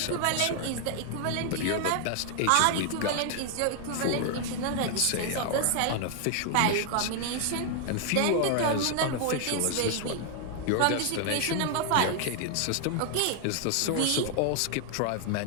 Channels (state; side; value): different; both; correlation 0.00